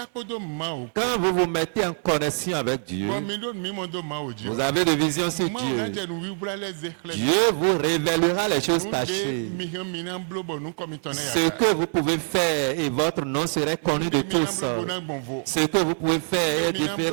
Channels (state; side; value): silent; left; 59 dB below the other